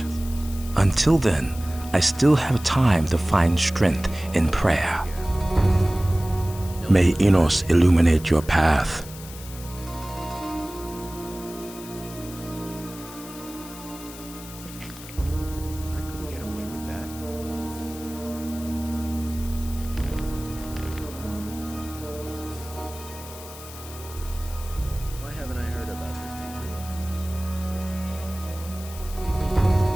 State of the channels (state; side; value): noise; left; hiss, 15 dB below the sound